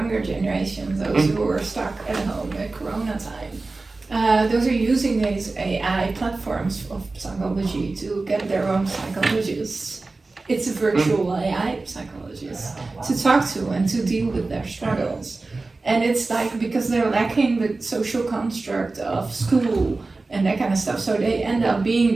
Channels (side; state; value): left; quieter; 3.5 dB